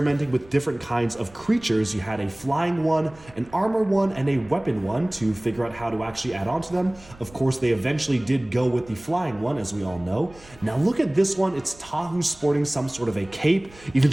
with different kinds of creatures. You had a flying one, an armor one, and a weapon one to figure out how to actually add on to them. Of course, they eventually did go with the flying one, as we all know. Now look at this one. It's Tahu sporting some sort of a cape, even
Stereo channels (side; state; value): right; noise; rumble, 23 dB below the sound